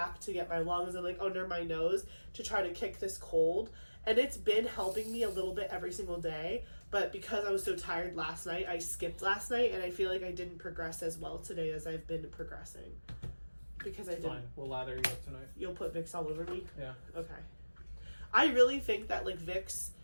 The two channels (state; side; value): inverted; both; correlation -1.00